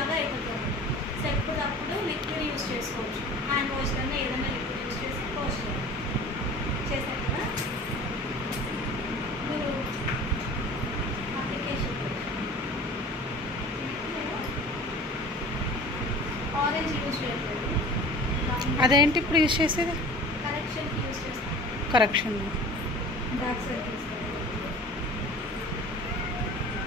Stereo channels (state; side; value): normal; both; correlation 0.41